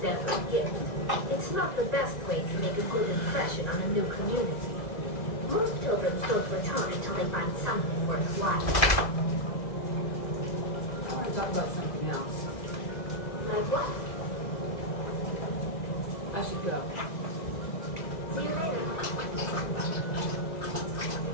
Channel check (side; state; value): right; late; 2.0 ms